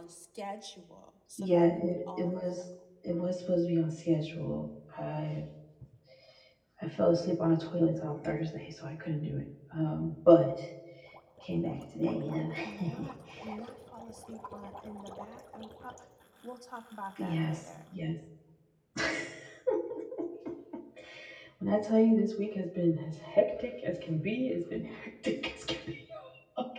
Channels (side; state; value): both; identical; correlation 1.00